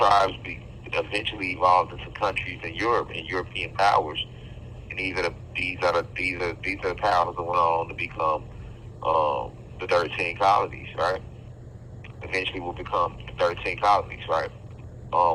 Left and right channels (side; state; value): both; identical; correlation 1.00